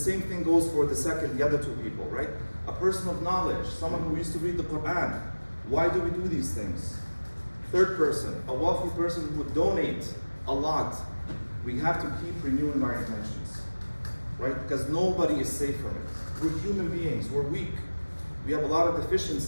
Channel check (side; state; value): both; inverted; correlation -1.00